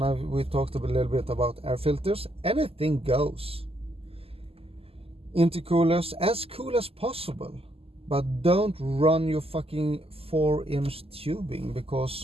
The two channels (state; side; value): late; left; 0.28 ms